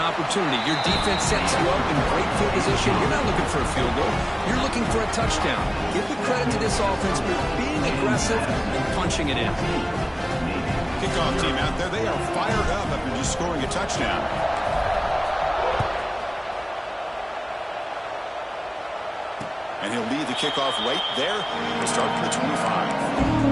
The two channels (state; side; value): identical; both; correlation 1.00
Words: Your defense sets you up in great field position. You're not looking for a field goal. You're looking for a touchdown. Give the credit to this offense for being aggressive and punching it in. Kickoff team out there, they are fired up after just scoring a touchdown. And he'll lead the kickoff right there. We'll start from the